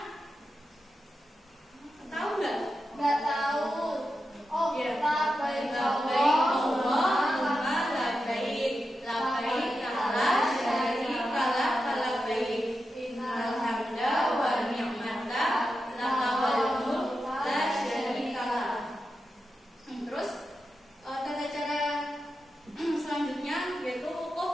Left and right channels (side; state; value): both; normal; correlation 0.89